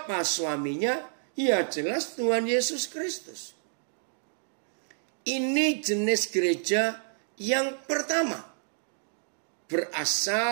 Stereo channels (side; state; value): left; silent; digital silence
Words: suaminya? Ya jelas Tuhan Yesus Kristus. Ini jenis gereja yang pertama.